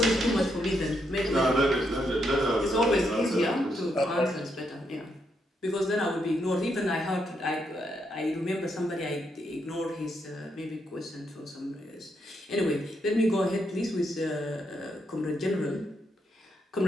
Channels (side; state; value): both; normal; correlation 0.79